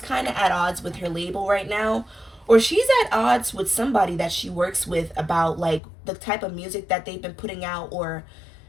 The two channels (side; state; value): right; drops out; at 5.8 s